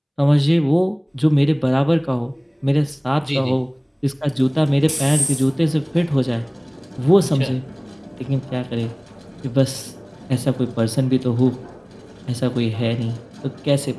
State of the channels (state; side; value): identical; both; correlation 1.00